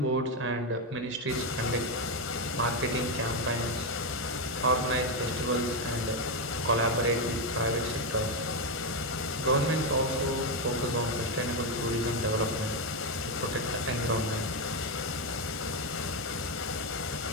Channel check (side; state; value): both; normal; correlation 0.06